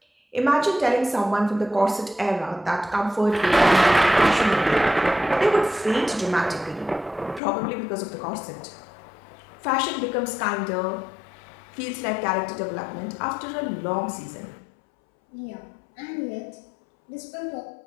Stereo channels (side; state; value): right; drops out; at 7.4 s